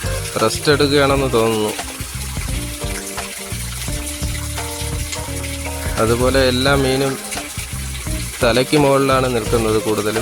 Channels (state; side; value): identical; both; correlation 1.00